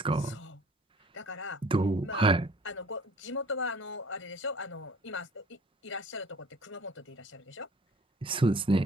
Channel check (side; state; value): both; normal; correlation 0.51